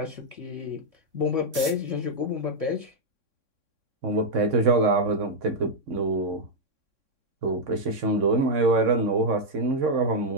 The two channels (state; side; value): late; left; 3.6 ms